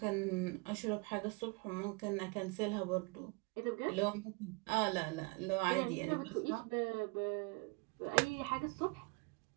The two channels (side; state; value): left; quieter; 28.5 dB